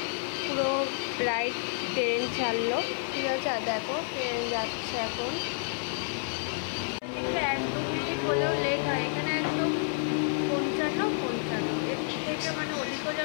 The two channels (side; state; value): right; silent; 58 dB below the other